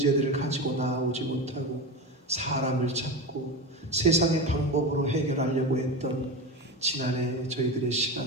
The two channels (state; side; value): normal; both; correlation 0.22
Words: 가지고 나아오지 못하고 사람을 찾고 세상의 방법으로 해결하려고 했던 지난해 저희들의